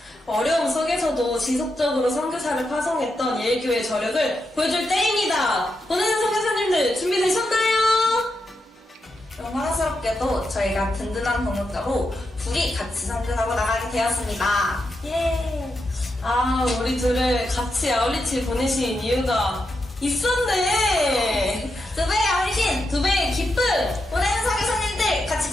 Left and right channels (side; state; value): both; normal; correlation 0.86